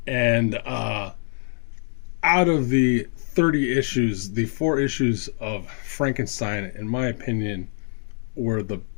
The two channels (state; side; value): silent; right; digital silence